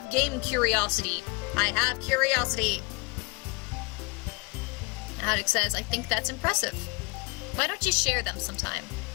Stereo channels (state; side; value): quieter; right; 29.2 dB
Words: game curiosity. I have curiosity. Haddock says, I think that's impressive. Why don't you share them sometime?